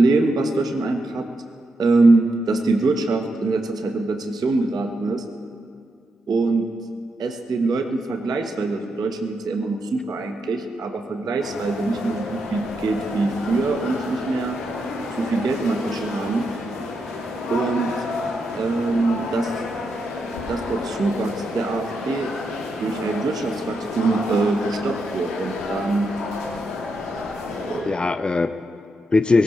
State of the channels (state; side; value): normal; both; correlation 0.83